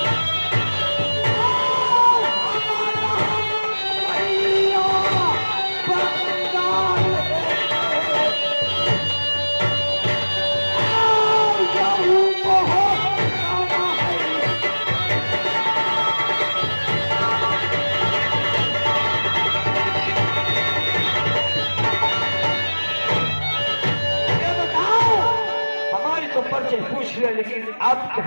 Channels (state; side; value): inverted; both; correlation -1.00